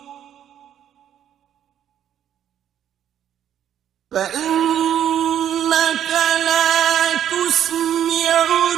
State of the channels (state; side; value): quieter; left; 10.2 dB